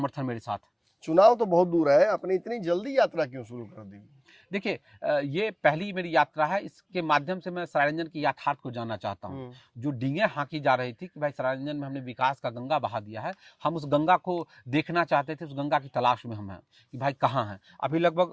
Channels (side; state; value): both; identical; correlation 1.00